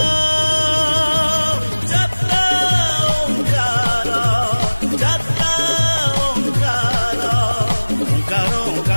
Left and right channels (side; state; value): both; inverted; correlation -1.00